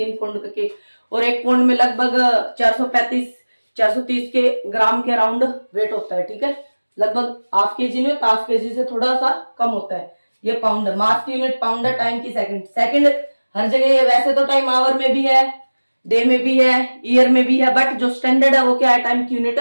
पाउंड का केक, और 1 पाउंड में लगभग 430 के ग्राम के अराउंड वेट होता है। ठीक है, लगभग हाफ केजी में, हाफ केजी से थोड़ा सा कम होता है। ये पाउंड है, मास की यूनिट पाउंड है, टाइम की सेकंड। सेकंड हर जगह है, वैसे तो टाइम आवर में भी है, डे में भी है, ईयर में भी है, बट जो स्टैंडर्ड है वो क्या है, टाइम की यूनिट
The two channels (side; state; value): both; inverted; correlation -1.00